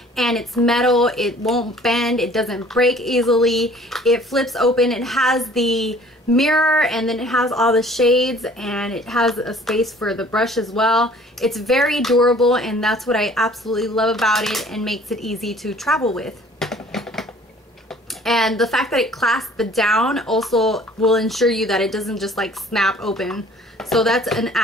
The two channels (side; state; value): both; normal; correlation 0.53